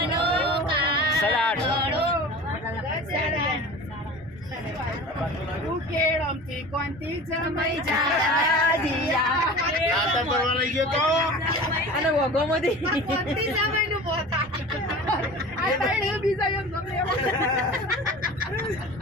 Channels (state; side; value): normal; both; correlation 0.37